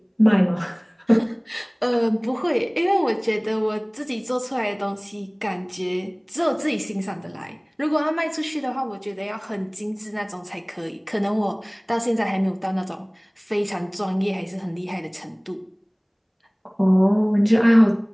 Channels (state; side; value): identical; both; correlation 1.00